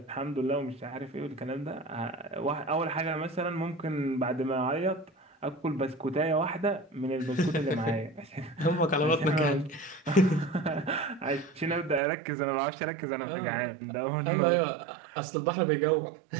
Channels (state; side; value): drops out; left; at 12.0 s